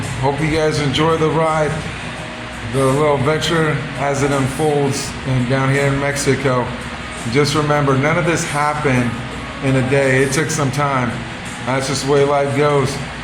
hope you guys enjoy the ride, the little adventure as it unfolds down here in Mexico. Just remember, none of this happened in a day. It took some time. That's just the way life goes.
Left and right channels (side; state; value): both; identical; correlation 1.00